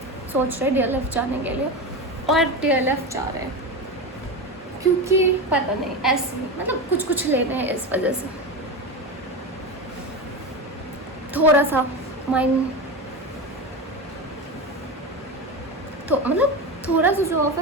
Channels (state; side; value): normal; both; correlation 0.21